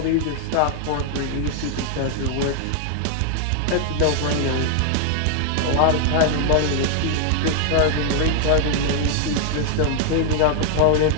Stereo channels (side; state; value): both; different; correlation 0.00